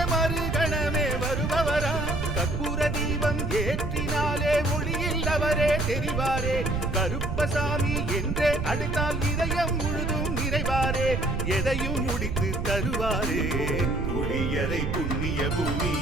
மறுகணமே வருபவராம். கற்பூர தீபம் ஏற்றினாலே ஒளியில் அவரே தெரிவாரே. கருப்பசாமி என்றே அழைத்தால் இதயம் முழுதும் நிறைவாரே. எதையும் முடித்து தருவாரே. புளியரை புண்ணிய பூமி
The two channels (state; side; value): noise; right; rumble, 2 dB below the sound